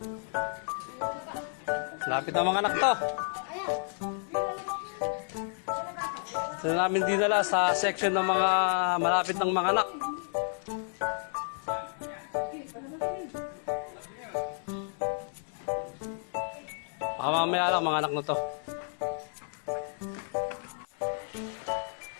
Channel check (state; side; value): silent; right; digital silence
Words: Lapit ng mga anak to. Sila namin dinala sa section ng mga malapit ng mga anak. Baka mamaya lang mga anak na to.